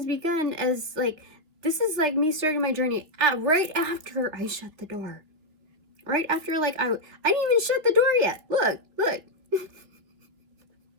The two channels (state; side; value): late; left; 3.3 ms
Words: begun as, like, this is like me starting my journey right after I shut the door. Right after, like, I didn't even shut the door yet. Look.